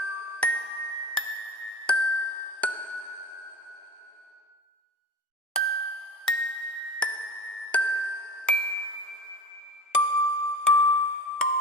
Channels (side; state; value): both; normal; correlation 0.31